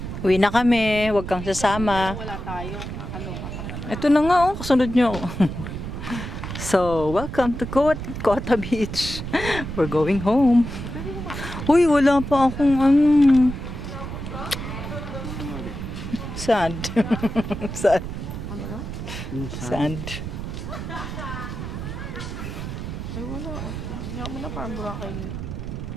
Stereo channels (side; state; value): right; noise; rumble, 7 dB below the sound